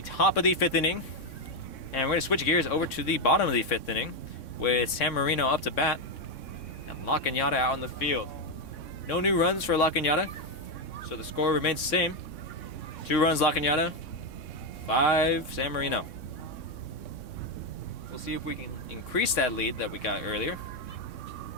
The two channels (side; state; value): right; late; 3.6 ms